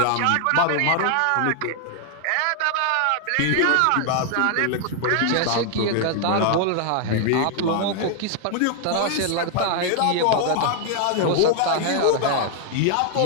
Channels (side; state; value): both; different; correlation 0.00